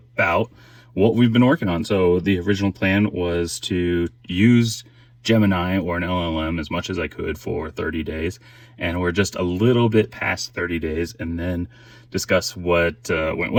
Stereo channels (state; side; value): identical; both; correlation 1.00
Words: what we've been working on. So the original plan was to use Gemini or an LLM as much as I could for 30 days. And we're just a little bit past 30 days, and then discuss what went